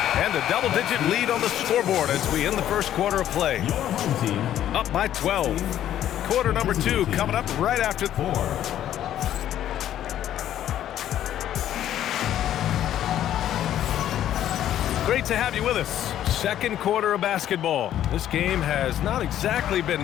And a double-digit lead on the scoreboard as we end the first quarter of play. Up by 12. Quarter number 2 coming up right after 4. Great to have you with us. Second quarter of basketball. This game has not exactly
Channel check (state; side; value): quieter; right; 11.5 dB